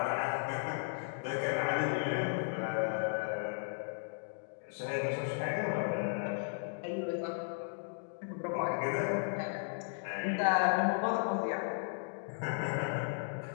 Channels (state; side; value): silent; right; digital silence